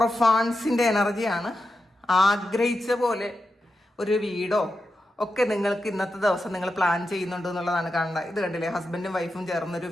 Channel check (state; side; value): normal; both; correlation 0.89